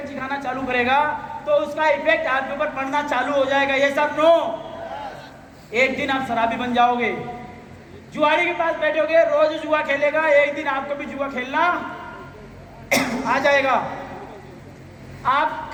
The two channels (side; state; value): both; identical; correlation 1.00